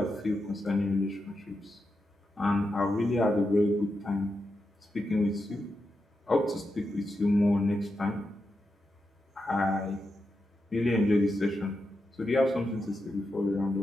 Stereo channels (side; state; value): both; normal; correlation 0.87